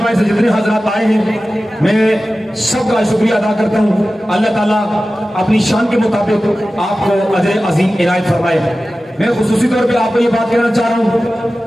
سے جتنے حضرات آئے ہیں، میں سب کا شکریہ ادا کرتا ہوں. اللہ تعالیٰ اپنی شان کے مطابق آپ کو اجر عظیم عنایت فرمائے. میں خصوصی طور پہ آپ کو یہ بات کہنا چاہ رہا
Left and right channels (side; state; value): both; normal; correlation 0.95